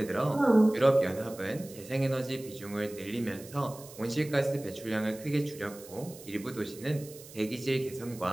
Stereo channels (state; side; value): noise; right; hiss, 18 dB below the sound